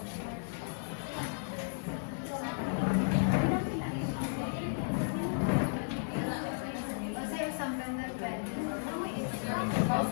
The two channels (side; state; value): right; silent; digital silence